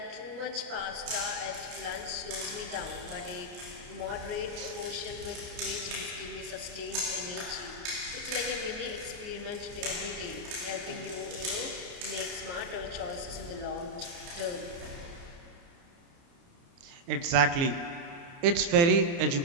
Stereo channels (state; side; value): late; left; 29 ms